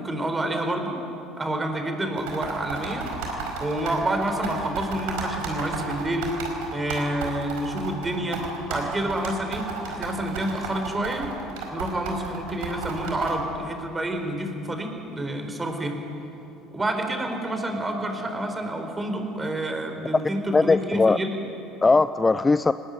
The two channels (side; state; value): both; normal; correlation 0.77